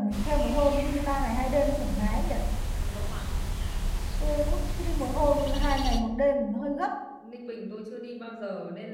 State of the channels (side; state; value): both; identical; correlation 1.00